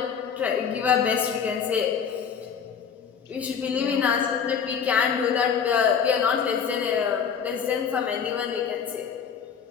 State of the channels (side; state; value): right; quieter; 7.1 dB